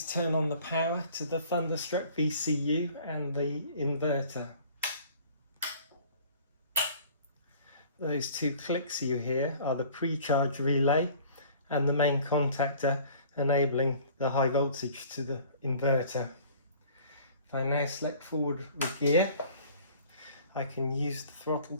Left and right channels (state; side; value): inverted; both; correlation -0.50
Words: turn on the power to the Thunderstruck VCU and the inverter. Those two clicks you hear are the pre-charge relay and the main contactor enabling the high voltage to the inverter. If I now select forward with gear, I can use the throttle